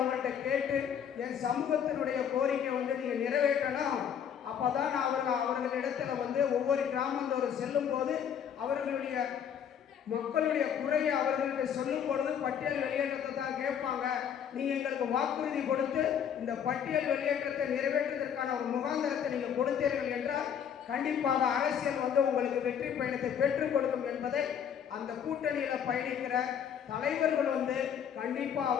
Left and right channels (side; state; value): right; quieter; 8.4 dB